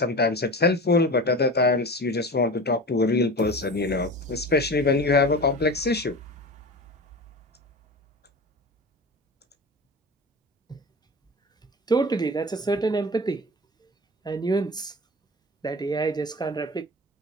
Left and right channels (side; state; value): both; normal; correlation 0.32